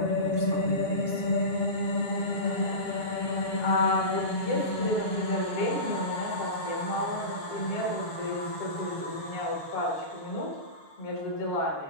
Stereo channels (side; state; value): right; late; 7.0 ms